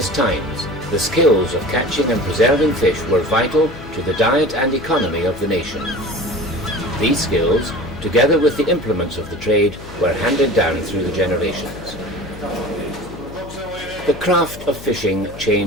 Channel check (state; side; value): noise; left; hum, 15 dB below the sound